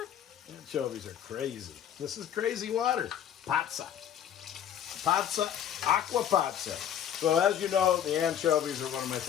Anchovies are crazy. This is crazy water. Pazza. Pazza, Acqua Pazza. So as you know, the anchovies are one of my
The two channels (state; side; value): quieter; right; 9.8 dB